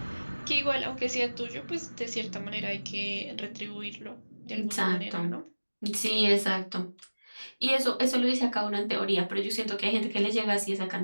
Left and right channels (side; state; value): both; inverted; correlation -1.00